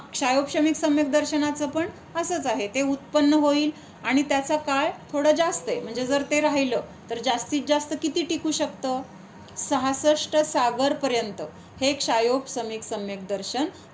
क्षायोपशमिक सम्यक दर्शनाचं पण असंच आहे. ते उत्पन्न होईल आणि त्याचा काळ थोडा जास्त आहे. म्हणजे जर ते राहिलं तर जास्तीत जास्त किती टिकू शकतं? 66 सागरपर्यंत हे क्षायोपशमिक सम्यक दर्शन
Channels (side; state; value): both; identical; correlation 1.00